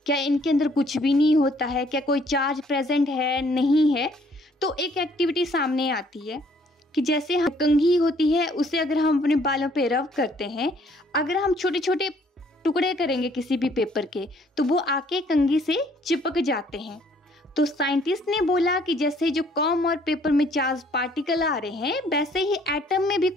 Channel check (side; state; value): both; normal; correlation 0.62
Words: क्या इनके अंदर कुछ भी नहीं होता है, क्या कोई चार्ज प्रेजेंट है नहीं है। तो एक एक्टिविटी सामने आती है कि जैसे हम कंघी होती है उसे अगर हम अपने बालों पे रब करते हैं, अगर हम छोटे छोटे टुकड़े करेंगे किसी भी पेपर के तो वो आके कंघी से चिपक जाते हैं। तो साइंटिस्ट ने बोला कि जैसे जो कॉम और पेपर में चार्ज पार्टिकल आ रहे हैं वैसे ही एटम में भी